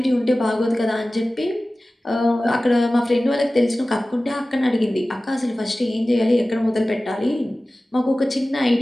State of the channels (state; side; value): normal; both; correlation 0.96